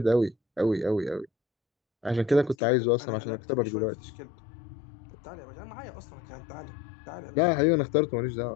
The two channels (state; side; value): drops out; right; at 2.6 s